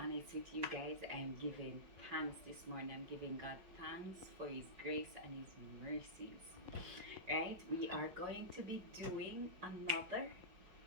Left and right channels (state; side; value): late; left; 5.2 ms